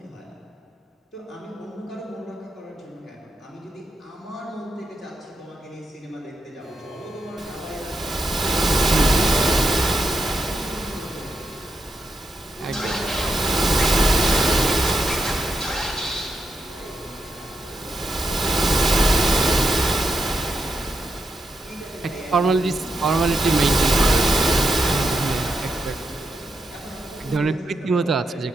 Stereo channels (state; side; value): normal; both; correlation 0.84